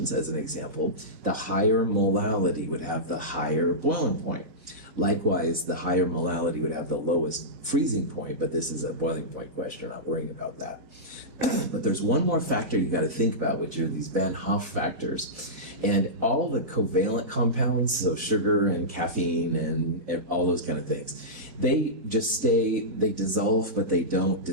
as an example, the higher molality would have the higher boiling point. Likewise, the higher molality would have the lowest freezing point, but this is a boiling point question, we're not worrying about that. But there's one more factor you got to think about, which are these Van Hoff factors. And all the covalent compounds, so sugar and caffeine and all those kind of things, they dissolve, but they don't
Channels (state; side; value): late; left; 4.1 ms